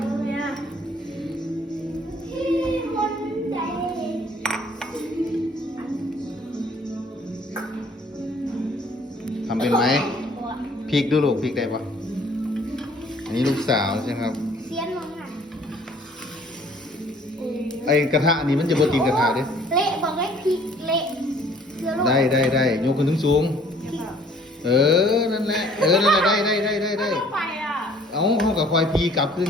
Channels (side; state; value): both; normal; correlation 0.57